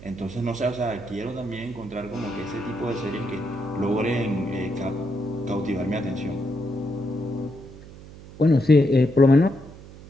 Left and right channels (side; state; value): right; noise; hum, 17 dB below the sound